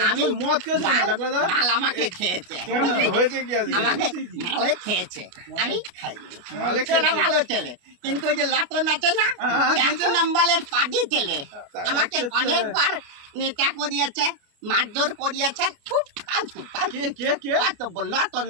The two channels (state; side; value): late; left; 28 ms